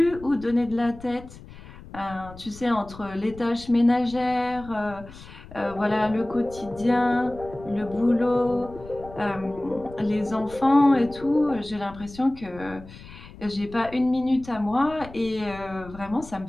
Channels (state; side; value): noise; left; rumble, 17 dB below the sound